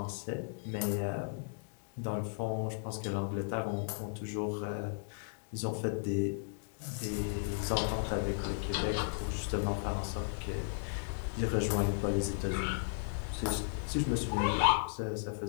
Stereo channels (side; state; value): right; silent; digital silence